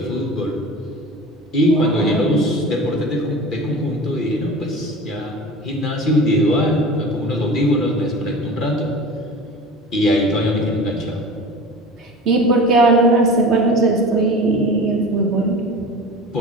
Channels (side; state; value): both; normal; correlation 0.36